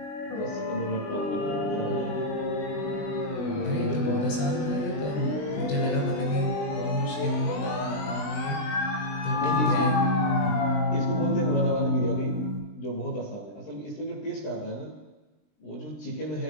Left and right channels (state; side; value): late; right; 20 ms